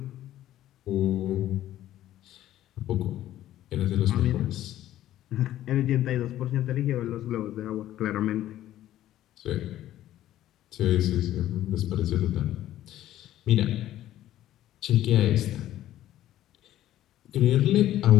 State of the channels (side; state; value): right; quieter; 13.2 dB